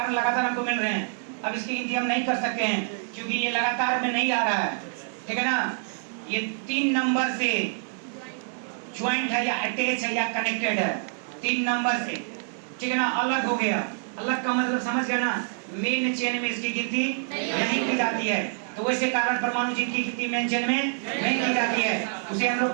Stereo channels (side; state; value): left; silent; 59 dB below the other